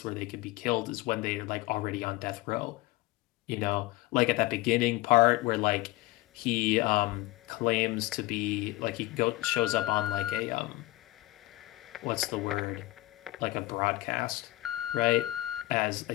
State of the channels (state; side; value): quieter; right; 18.6 dB